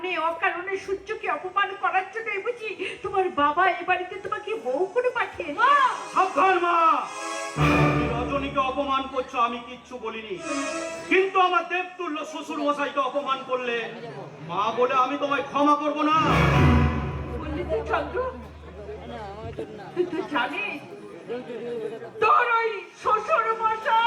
অকারণে সূর্যকে অপমান করার জন্যই বুঝি তোমার বাবা এ বাড়িতে তোমাকে বউ করে পাঠিয়েছে? মা, সাবধান মা, তুমি রজনীকে অপমান করছো, আমি কিচ্ছু বলিনি। কিন্তু আমার দেবতুল্য শ্বশুর মশাইকে অপমান করলে মা বলে আমি তোমায় ক্ষমা করব না। বললি তো চন্দ্র, তুই তো জানিস তোর ওই শ্বশুর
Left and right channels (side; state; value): both; identical; correlation 1.00